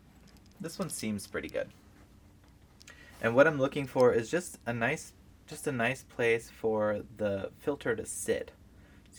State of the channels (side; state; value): both; identical; correlation 1.00